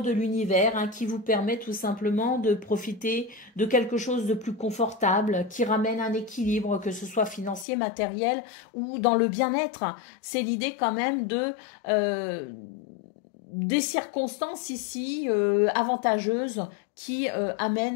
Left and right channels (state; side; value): drops out; right; at 7.7 s